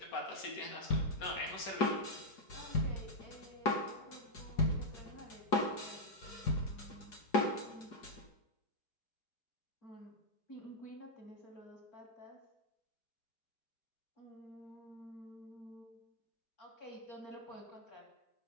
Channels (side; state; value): right; late; 4.9 ms